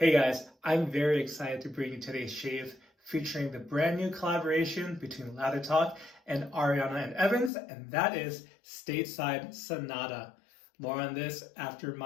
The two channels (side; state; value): right; drops out; at 7.5 s